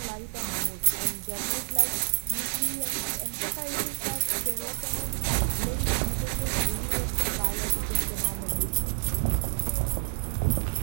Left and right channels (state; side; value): silent; left; digital silence